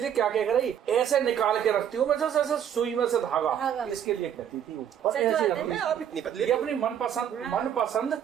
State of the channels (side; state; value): left; quieter; 9.3 dB